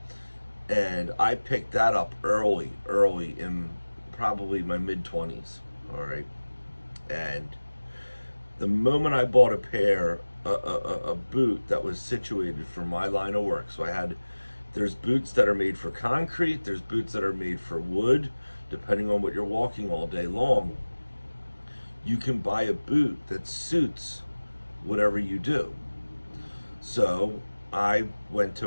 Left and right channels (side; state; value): both; inverted; correlation -1.00